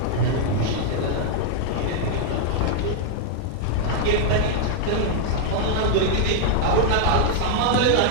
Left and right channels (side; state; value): both; different; correlation -0.01